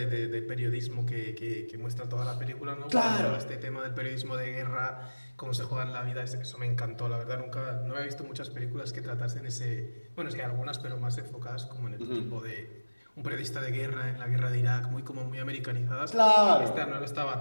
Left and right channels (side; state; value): both; inverted; correlation -1.00